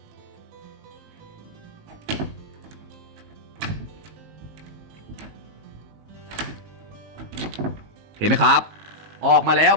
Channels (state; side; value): late; left; 19 ms